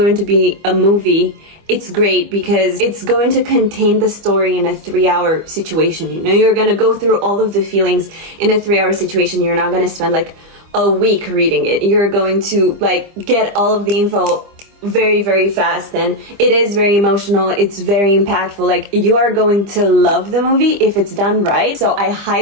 to be a movie, it's great because it's going to contain the story in a 3-hour situation. You know, you're going to go through all of the feelings in a 3-hour situation. You're not going to spend like a week reading it. You're going to like get all of the info very, very fast, and it is very emotional. It's very impactful. Like you are going to love the movie if it's done right. So I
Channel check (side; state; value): left; late; 25 ms